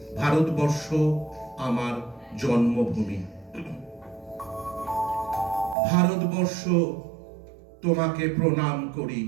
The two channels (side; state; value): left; drops out; at 5.8 s